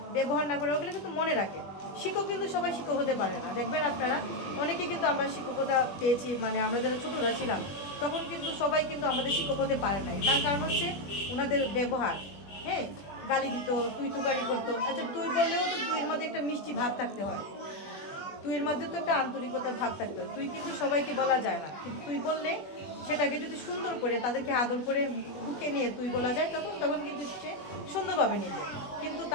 ব্যবহার না করে, ওগুলো কিন্তু মনে রাখে। শিক্ষক কিন্তু সবাই শিক্ষক হতে পারে না, দেখবেন আপনারা অনেকে কিন্তু আমরা শিক্ষকতা পেয়েছি, মানে আমরা যারা ছোটরা ছিলাম তখন কিন্তু সবাই কিন্তু আমাদের শিক্ষক হতে পারে নাই। তার কারণ হচ্ছে ওনাদের ব্যবহার। হ্যাঁ, গালি দিত, তুই তুকারি করতো। আচ্ছা, তুই বললেও তো তুইয়ের মধ্যে একটা মিষ্টি ভাব থাকতে হয়, তুইয়ের মধ্যে তো একটা আন্তরিকতার ভাব থাকতে হয়। তুই কিন্তু সবাইকে বলা যায় না, কিন্তু তুই বললে সেটাকে যদি সুন্দর করে তাদেরকে আদর করে বুকে নিয়ে তুই বলা যায়, তখন কিন্তু সে সুন্দরভাবে নেবে। কিন্তু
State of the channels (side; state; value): right; late; 21 ms